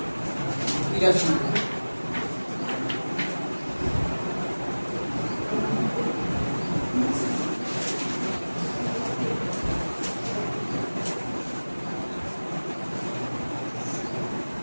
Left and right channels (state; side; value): inverted; both; correlation -1.00